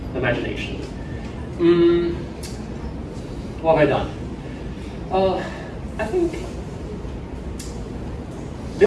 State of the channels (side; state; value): both; identical; correlation 1.00